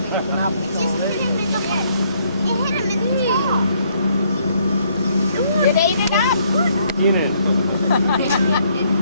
think I'll be Just put him in the bed. It hit him in the knee. It ate it up. Eat it.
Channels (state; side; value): inverted; both; correlation -0.68